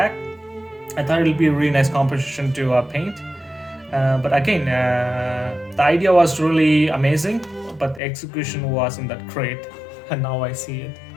I thought it would be a really nice composition to paint. But again, the idea was really amazing, but the execution wasn't that great. And now I see it.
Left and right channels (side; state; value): right; drops out; at 8.0 s